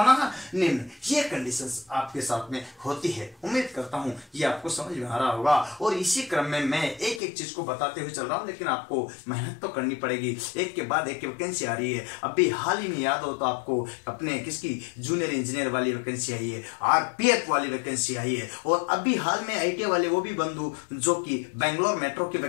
है? निम्न। ये कंडीशंस आपके साथ में होती है। उम्मीद करता हूं ये आपको समझ में आ रहा होगा। और इसी क्रम में मैं एक एक चीज को बताते हुए चल रहा हूं, लेकिन आपको मेहनत तो करनी पड़ेगी। एक के बाद एक वैकेंसी आ रही है। अभी हाल ही में याद हो तो आपको अपने किसकी जूनियर इंजीनियर वाली वैकेंसी आई है, आरपीएफ वाली वैकेंसी आई है, और अभी हाल में आईटीआई वाले वो भी बंधु जो कि बेंगलोर मेट्रो की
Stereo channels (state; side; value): drops out; right; at 7.2 s